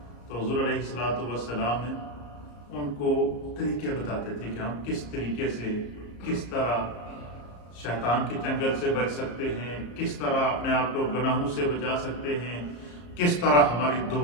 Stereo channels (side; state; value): right; late; 34 ms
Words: تو حضور علیہ السلام نے ان کو طریقے بتاتے تھے کہ ہم کس طریقے سے کس طرح شیطان کے چنگل سے بچ سکتے ہیں، کس طرح اپنے آپ کو گناہوں سے بچا سکتے ہیں، کس طرح ہماری